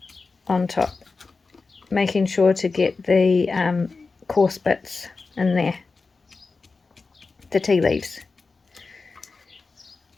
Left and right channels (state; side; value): quieter; right; 4.1 dB